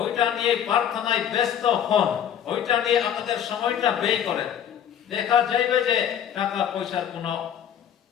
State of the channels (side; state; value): right; quieter; 9.4 dB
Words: নিয়ে প্রার্থনায় ব্যস্ত হন, ওইটা নিয়ে আপনাদের সময়টা ব্যয় করেন। দেখা যাবে যে টাকা পয়সার কোনো